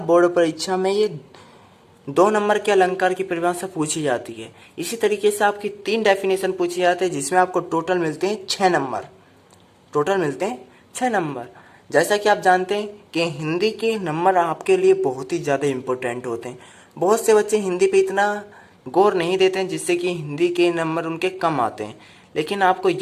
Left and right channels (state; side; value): identical; both; correlation 1.00